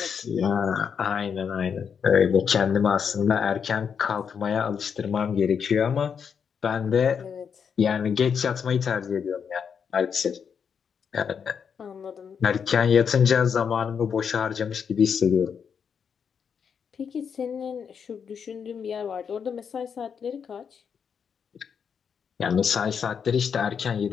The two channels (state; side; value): quieter; right; 6.9 dB